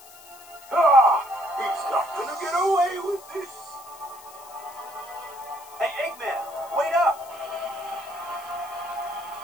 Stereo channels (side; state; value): left; noise; hiss, 20 dB below the sound